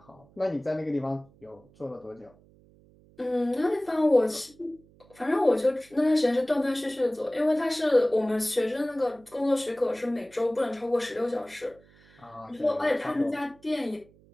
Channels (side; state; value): right; noise; hum, 28 dB below the sound